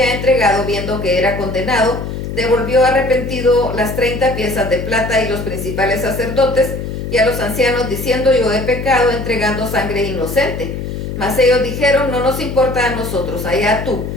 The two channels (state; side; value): noise; left; hum, 6 dB below the sound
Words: entregado, viendo que era condenado, devolvió arrepentido las 30 piezas de plata, y los principales sacerdotes y a los ancianos diciendo: yo he pecado entregando sangre inocente. Mas ellos dijeron: no nos importa a nosotros, allá tú.